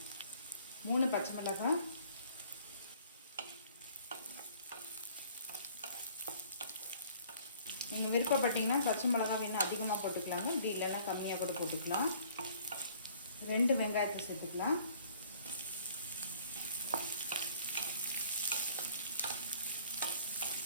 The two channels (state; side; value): inverted; both; correlation -0.56